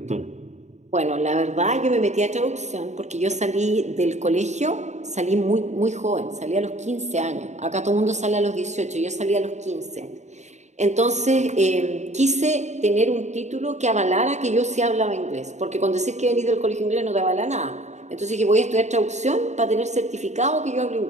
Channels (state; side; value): late; left; 0.33 ms